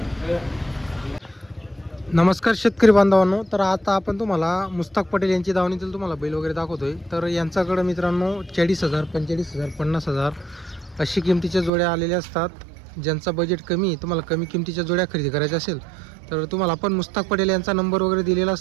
नमस्कार शेतकरी बांधवांनो. तर आता आपण तुम्हाला मुस्ताक पटेल यांची दावणीतील तुम्हाला बैल वगैरे दाखवतोय. तर यांच्याकडे मित्रांनो 40,000 45,000 50,000 अशी किमतीच्या जोड्या आलेल्या असतात. ज्यांचा बजेट कमी आहे तुम्हाला कमी किमतीच्या जोड्या खरेदी करायच्या असेल तर तुम्हाला आपण मुस्ताक पटेल यांचा नंबर वगैरे दिलेला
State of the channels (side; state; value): left; drops out; at 11.7 s